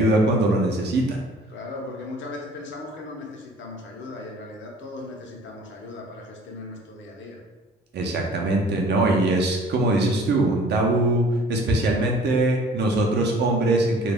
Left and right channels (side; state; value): both; normal; correlation 0.51